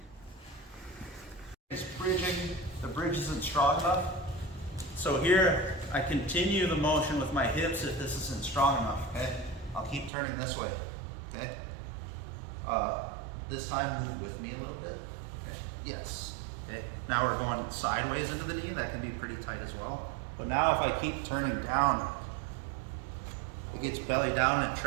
It's bridging. The bridge isn't strong enough. So here, I continue the motion with my hips if this isn't strong enough, okay? I'll keep turning this way, okay? This time, move with me a little bit, okay? Yes, okay? Now we're going sideways into the knee. That can be pretty tight as well. But now if I keep turning down, it gets belly down and it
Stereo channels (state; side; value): drops out; left; at 10.1 s